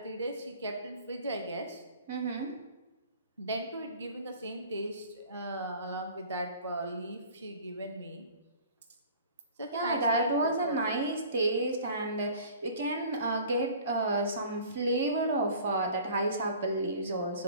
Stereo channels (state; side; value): inverted; both; correlation -0.46